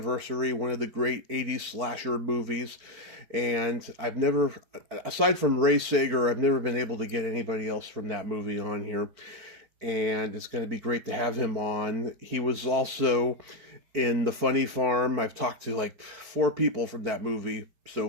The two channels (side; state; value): left; late; 4.5 ms